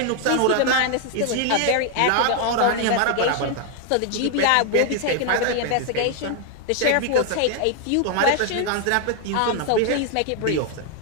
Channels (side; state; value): both; different; correlation 0.00